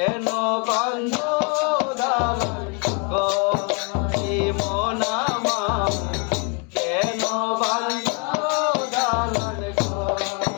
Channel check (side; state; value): right; quieter; 35.2 dB